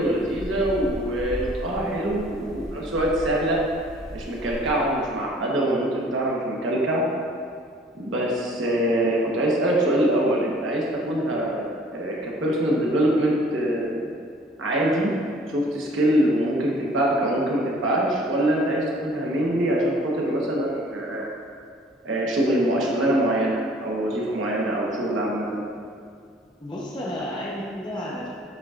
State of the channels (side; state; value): both; normal; correlation 0.54